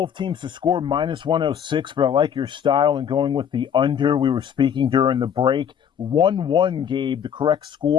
teams to score minus 106, but I like your style and going with the under. We were speaking during the break. 1-1, Gabe, the correct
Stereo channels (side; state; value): right; quieter; 8.4 dB